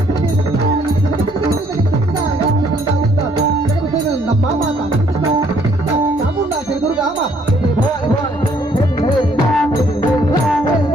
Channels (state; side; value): noise; right; hum, 25 dB below the sound